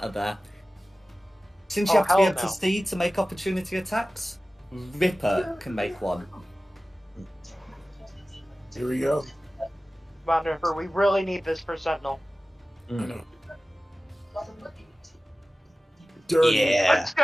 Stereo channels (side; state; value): both; normal; correlation 0.96